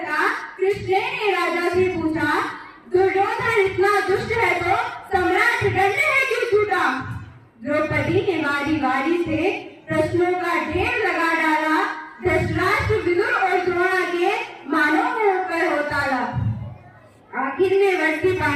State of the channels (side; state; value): both; identical; correlation 1.00